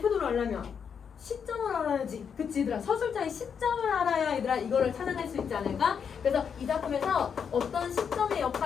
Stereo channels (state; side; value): quieter; right; 7.0 dB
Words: 태도를 알려면 시점을 알아야지. 그치 얘들아? 서술자의 시점을 알아야 얘들아 이거를 찾아낼 수 있지 않을까? 그래서 이 작품에서 어떤 시점의